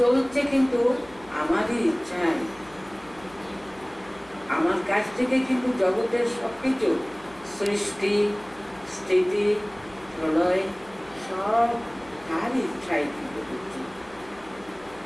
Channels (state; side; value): noise; left; hum, 25 dB below the sound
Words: কিন্তু আমারই ইচ্ছায়। আমার কাছ থেকে কিন্তু জগতের সবকিছু সৃষ্টি, স্থিতি, প্রলয় সব তার ইচ্ছায় কিন্তু হচ্ছে।